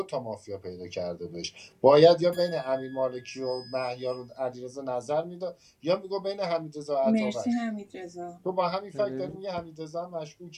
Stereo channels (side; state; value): both; identical; correlation 1.00